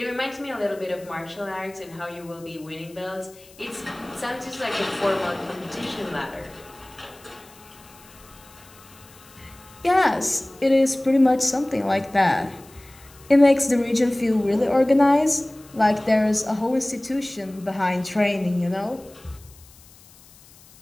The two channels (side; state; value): left; noise; hiss, 24 dB below the sound